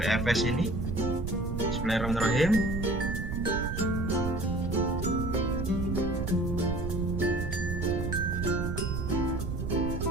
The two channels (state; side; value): noise; right; rumble, 3 dB below the sound